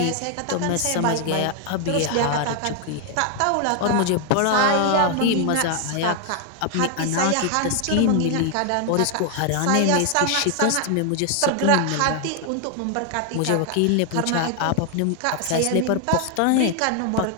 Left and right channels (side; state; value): both; different; correlation 0.00